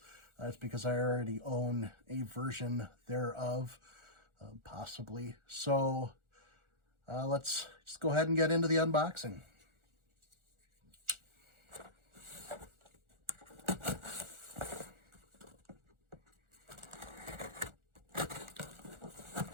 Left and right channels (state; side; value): late; left; 1.4 ms